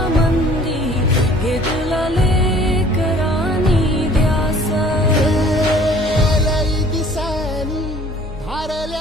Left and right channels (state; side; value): normal; both; correlation 0.53